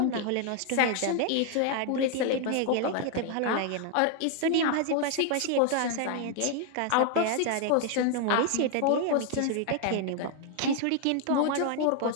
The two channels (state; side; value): different; both; correlation 0.00